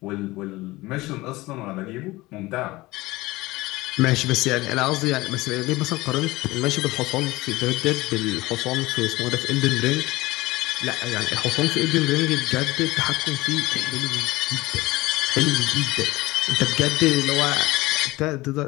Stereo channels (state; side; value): quieter; right; 20.1 dB